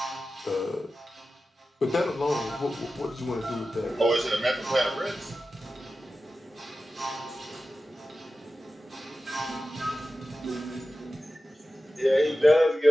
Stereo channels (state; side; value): normal; both; correlation 0.93